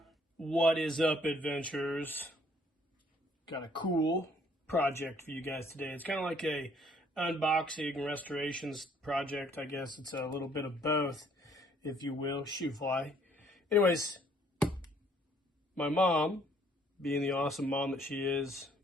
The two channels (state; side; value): normal; both; correlation 0.63